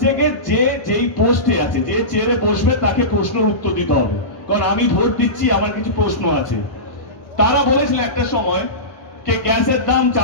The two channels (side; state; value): right; late; 1.1 ms